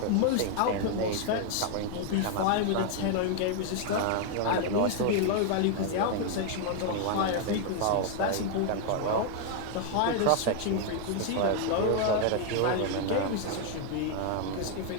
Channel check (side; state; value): both; different; correlation 0.00